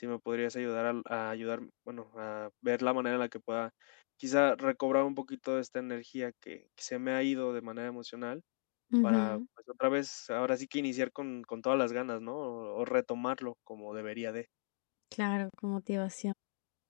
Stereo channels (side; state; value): right; silent; digital silence